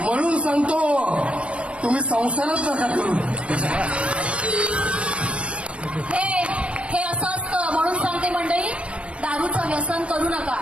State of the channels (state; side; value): late; left; 0.061 ms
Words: सांगतो तुम्ही संसारच नका करू. हे असं असतं म्हणून सांगते मंडळी, दारूचं व्यसन करू नका.